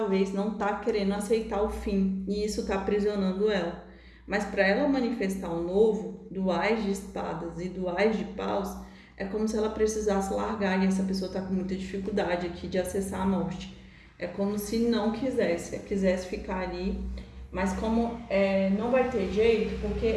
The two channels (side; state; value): both; identical; correlation 1.00